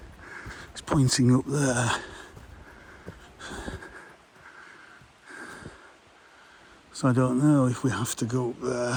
pointing up there. So I don't know if we have to go up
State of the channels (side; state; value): both; identical; correlation 1.00